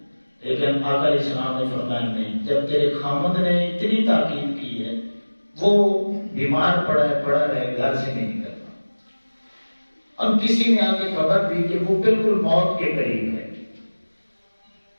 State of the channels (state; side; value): inverted; both; correlation -1.00